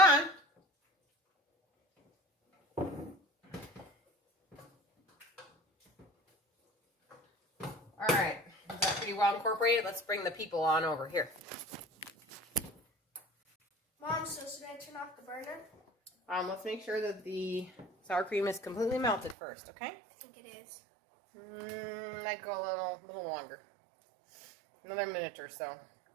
All right, is that pretty well incorporated? Let's bring the people on over here. Mom, so should I turn off the burner? Let's make sure that the sour cream is completely melted first, okay? I think it is. I'd go a little longer. Another minute or so.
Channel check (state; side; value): drops out; left; at 19.4 s